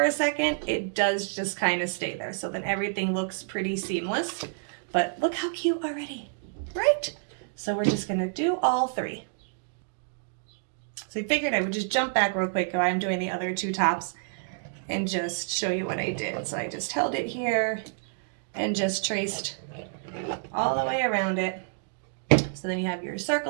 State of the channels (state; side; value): silent; left; digital silence